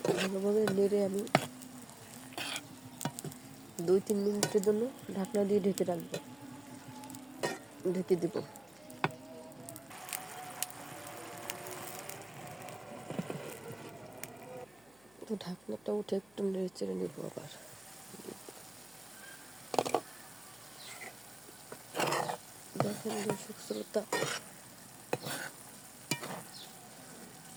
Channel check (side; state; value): left; noise; hum, 28 dB below the sound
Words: ভালোভাবে নেড়ে আমি 2-3 মিনিটের জন্য ঢাকনা দিয়ে ঢেকে রাখবো, ঢেকে দেব। তো ঢাকনাটা উঠে একটু নেড়ে চেড়ে নেব আবার। দেখেন দর্শক শ্রোতা,